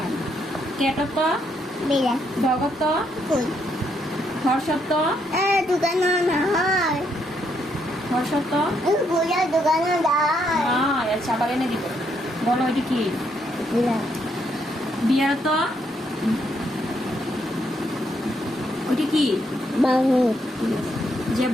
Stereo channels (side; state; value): both; normal; correlation 0.75